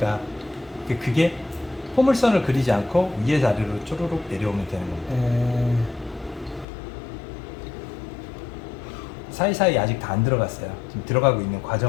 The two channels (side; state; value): right; drops out; at 6.7 s